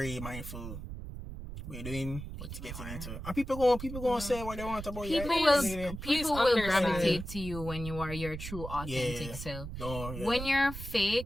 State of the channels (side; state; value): right; noise; rumble, 9 dB below the sound